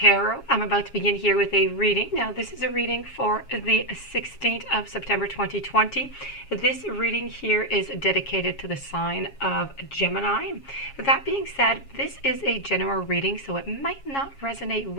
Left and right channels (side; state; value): right; late; 7.3 ms